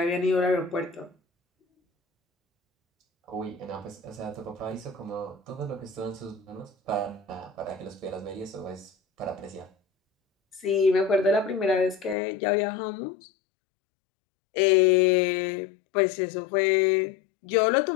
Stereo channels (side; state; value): right; drops out; at 12.2 s